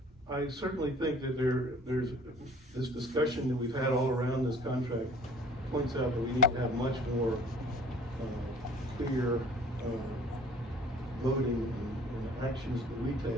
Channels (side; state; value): both; normal; correlation 0.51